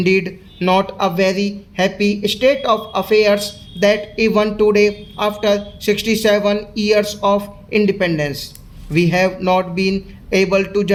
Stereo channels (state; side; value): identical; both; correlation 1.00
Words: not a very happy state of affairs that even today, after 67 years of independence, we have not been able to